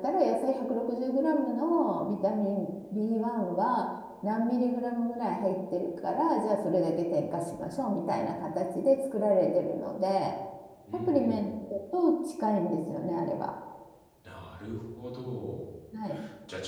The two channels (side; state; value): both; identical; correlation 1.00